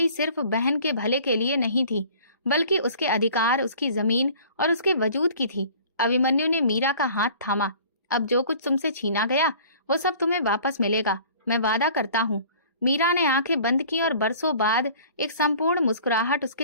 सिर्फ बहन के भले के लिए नहीं थी, बल्कि उसके अधिकार, उसकी जमीन और उसके वजूद की थी। अभिमन्यु ने मीरा का हाथ थामा। अब जो कुछ तुमसे छीना गया वो सब तुम्हें वापस मिलेगा, मैं वादा करता हूँ। मीरा ने आंखें बंद की और बरसों बाद एक संपूर्ण मुस्कुराहट उसके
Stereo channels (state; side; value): inverted; both; correlation -0.48